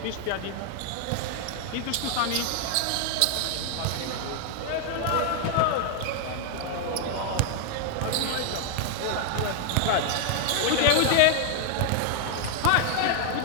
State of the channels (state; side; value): different; both; correlation 0.00